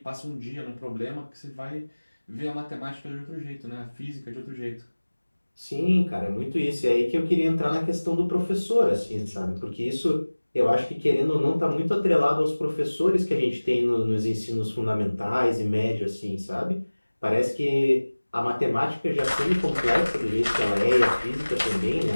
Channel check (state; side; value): inverted; both; correlation -1.00